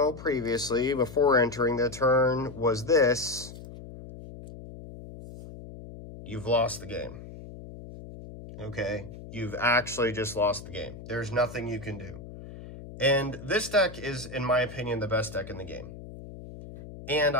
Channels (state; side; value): noise; left; hum, 14 dB below the sound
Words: previously, before entering the turn, was this, you've lost the game. Okay? You've actually just lost the game. There's nothing you can do. And this deck is, in my opinion, the best deck in the game. And